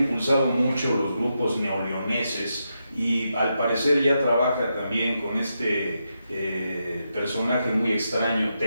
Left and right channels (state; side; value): inverted; both; correlation -0.85